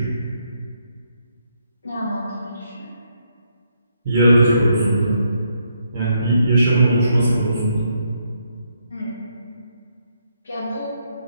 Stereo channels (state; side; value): inverted; both; correlation -0.76